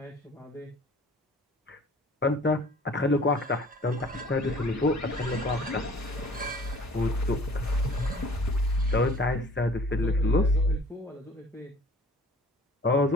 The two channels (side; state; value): both; normal; correlation 0.50